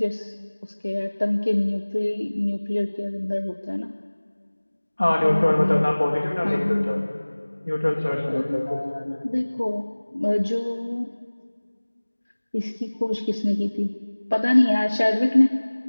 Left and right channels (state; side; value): inverted; both; correlation -1.00